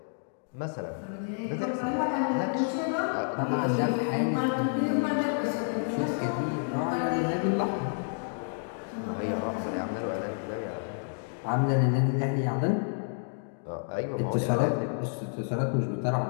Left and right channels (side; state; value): right; silent; digital silence